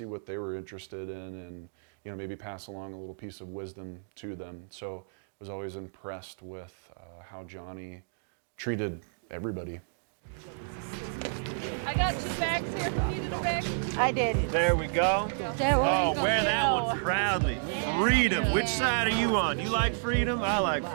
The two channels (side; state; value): left; silent; digital silence